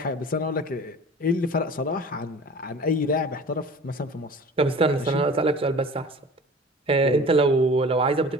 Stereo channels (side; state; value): both; normal; correlation 0.42